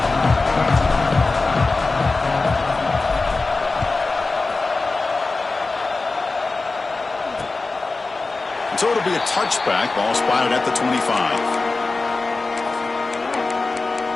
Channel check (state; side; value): quieter; right; 3.6 dB